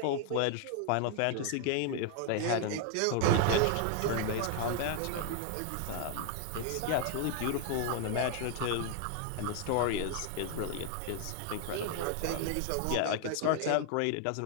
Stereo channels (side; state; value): both; different; correlation 0.00